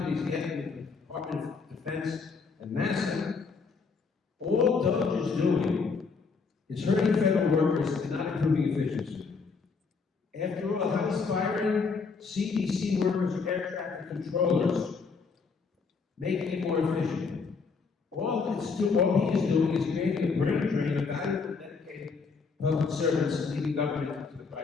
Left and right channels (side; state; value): right; quieter; 4.9 dB